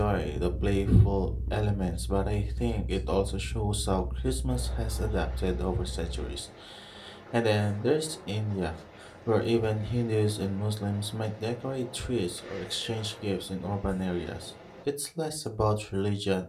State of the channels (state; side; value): identical; both; correlation 1.00